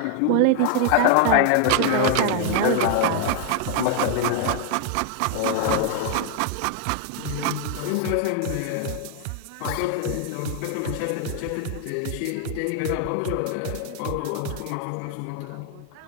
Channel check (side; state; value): both; different; correlation 0.00